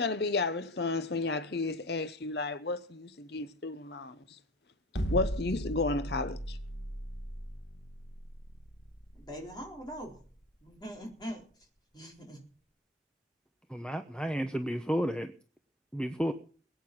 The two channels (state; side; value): normal; both; correlation 0.37